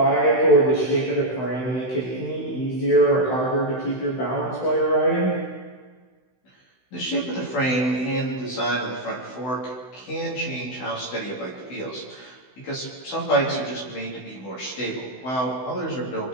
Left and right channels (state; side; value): late; right; 16 ms